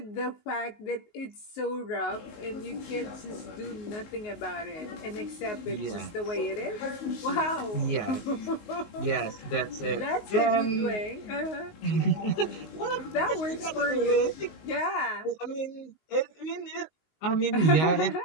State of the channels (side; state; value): right; late; 19 ms